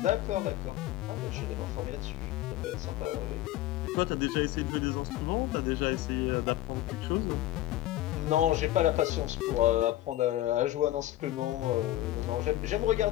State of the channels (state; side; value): quieter; right; 14.7 dB